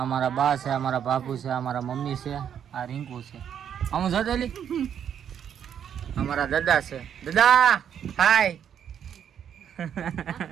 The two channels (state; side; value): quieter; left; 8.8 dB